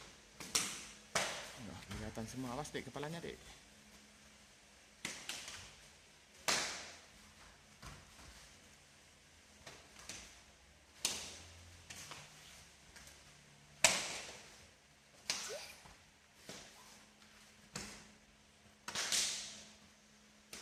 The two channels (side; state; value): both; identical; correlation 1.00